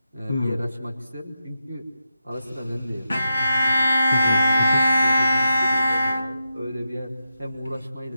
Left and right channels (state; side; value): inverted; both; correlation -0.88